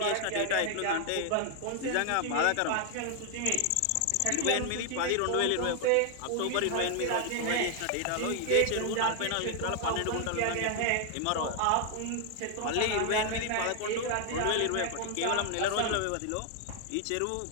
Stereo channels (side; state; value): both; different; correlation 0.00